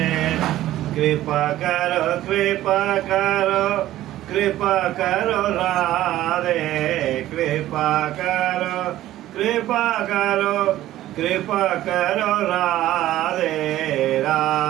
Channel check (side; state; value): left; quieter; 14.2 dB